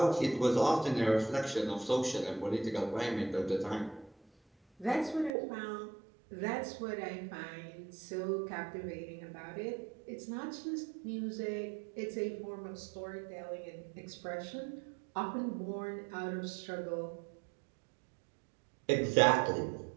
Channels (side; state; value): left; drops out; at 5.3 s